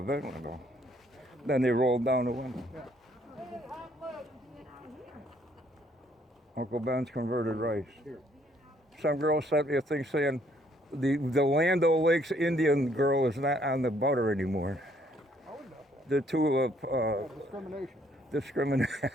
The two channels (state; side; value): normal; both; correlation 0.66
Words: window. Then they rolled down the window. Yeah. Uncle Ben's converted rice. Here. Some girl sent me a thing saying the Land O'Lakes Indian girl is not on the butter anymore. I wouldn't know that. The two Discrimination. discriminate.